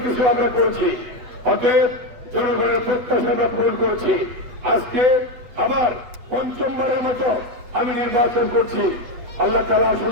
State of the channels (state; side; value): late; left; 8.3 ms